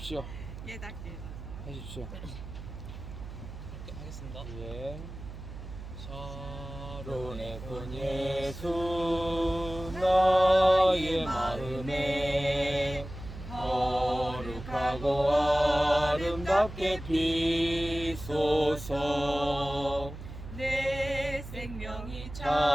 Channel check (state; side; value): noise; right; hum, 11 dB below the sound